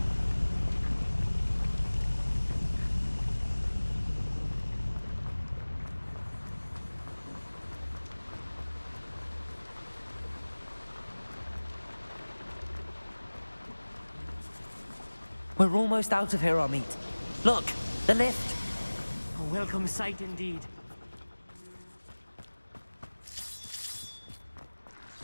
We're almost out of here, Amit. Look, the lift. A welcome sight indeed.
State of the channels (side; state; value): both; inverted; correlation -1.00